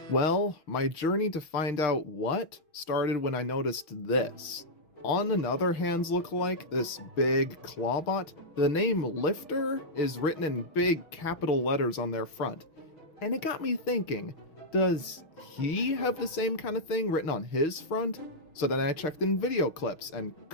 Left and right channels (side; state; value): right; late; 6.3 ms